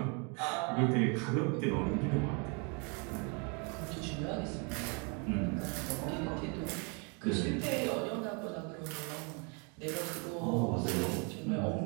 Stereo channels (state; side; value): quieter; left; 34.2 dB